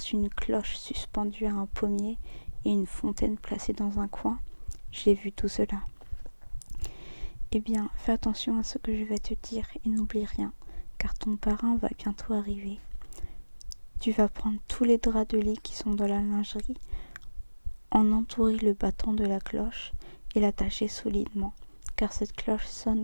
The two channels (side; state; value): both; inverted; correlation -1.00